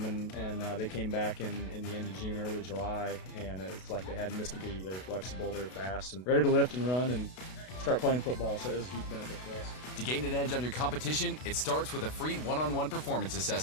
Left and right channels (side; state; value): right; late; 32 ms